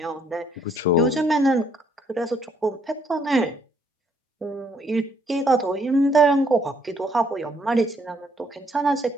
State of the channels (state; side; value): normal; both; correlation 0.68